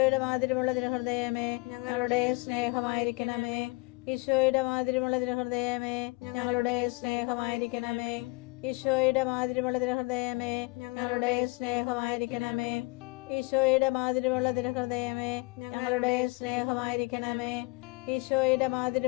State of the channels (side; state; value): right; quieter; 25.7 dB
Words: മാതിരിയുള്ള തിരുഹൃദയമേ ഞങ്ങളുടെ സ്നേഹമായിരിക്കണമേ. ഈശോയുടെ മാതിരിയുള്ള തിരുഹൃദയമേ ഞങ്ങളുടെ സ്നേഹമായിരിക്കണമേ. ഈശോയുടെ മാതിരിയുള്ള തിരുഹൃദയമേ ഞങ്ങളുടെ സ്നേഹമായിരിക്കണമേ. ഈശോയുടെ മാതിരിയുള്ള തിരുഹൃദയമേ ഞങ്ങളുടെ സ്നേഹമായിരിക്കണമേ. ഈശോയുടെ